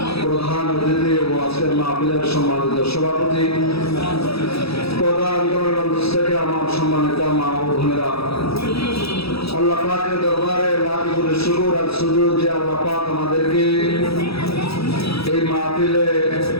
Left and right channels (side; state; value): right; late; 0.77 ms